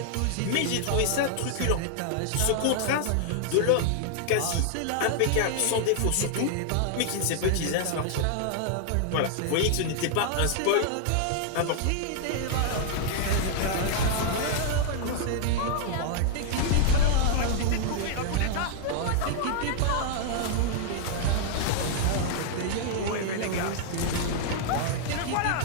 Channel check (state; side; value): different; both; correlation -0.01